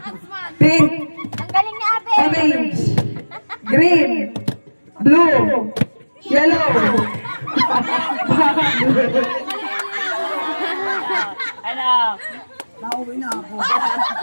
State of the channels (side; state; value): both; inverted; correlation -1.00